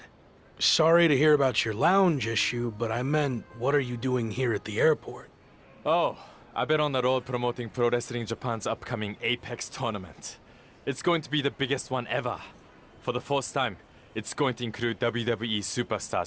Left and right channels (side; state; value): both; identical; correlation 1.00